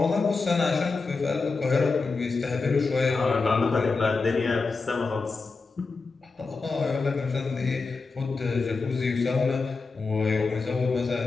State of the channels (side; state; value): right; quieter; 4.2 dB